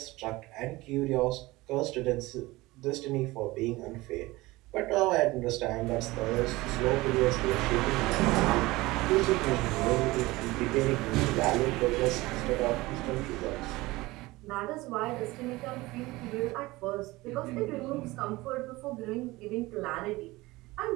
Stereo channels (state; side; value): quieter; left; 20.3 dB